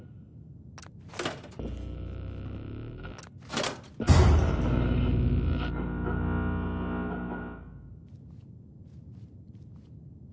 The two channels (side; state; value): both; identical; correlation 1.00